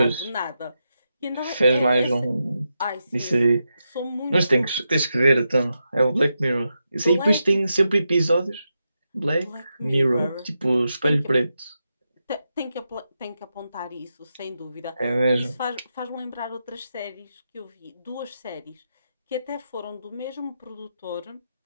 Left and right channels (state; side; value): inverted; both; correlation -0.87